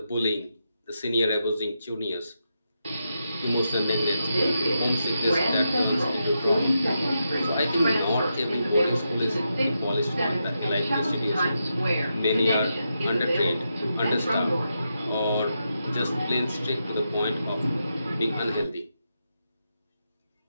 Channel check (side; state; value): both; inverted; correlation -0.85